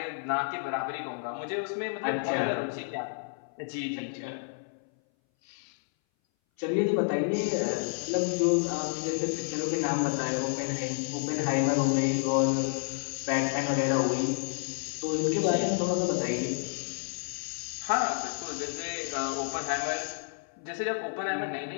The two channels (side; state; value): right; silent; 58 dB below the other